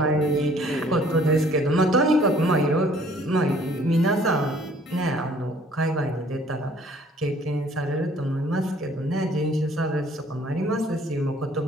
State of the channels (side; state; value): both; normal; correlation 0.57